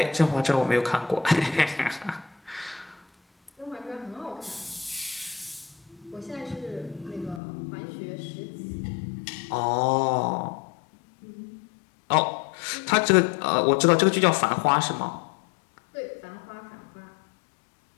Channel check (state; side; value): drops out; right; at 7.4 s